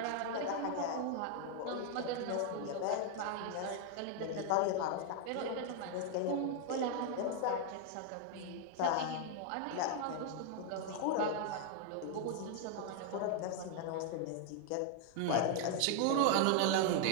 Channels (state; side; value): different; both; correlation 0.00